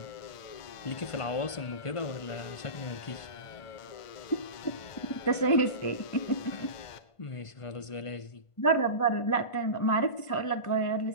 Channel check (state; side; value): late; right; 1.5 ms